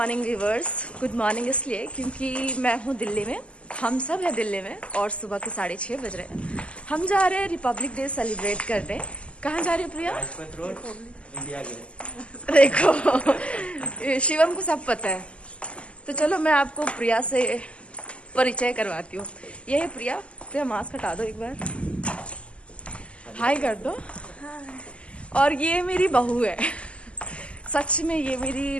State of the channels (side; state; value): right; late; 0.057 ms